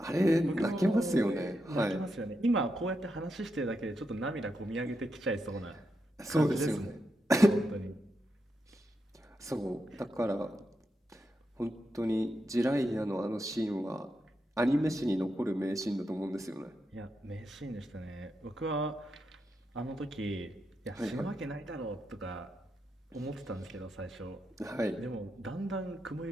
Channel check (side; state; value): both; normal; correlation 0.85